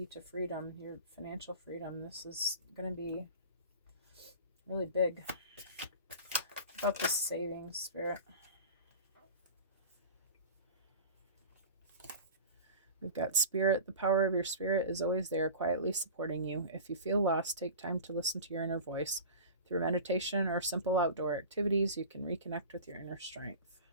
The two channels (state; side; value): inverted; both; correlation -0.35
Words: to freedom, your financial freedom. This is going to be really big. About this savings, Spirit. We've got Spirit. The power of your spirit is always there, quietly supporting you. If you feel lost, take time to listen to your inner voice. Through meditation or simple outdoor activities, you can reconnect with your inner strength.